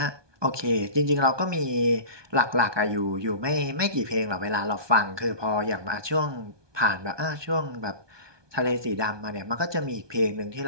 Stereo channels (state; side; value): late; left; 1.2 ms